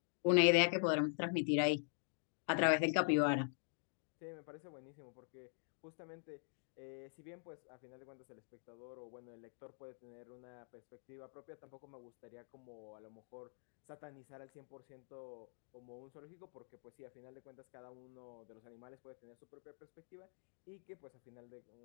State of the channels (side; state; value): right; silent; digital silence